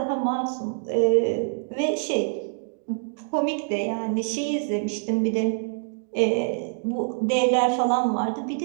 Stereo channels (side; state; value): left; silent; digital silence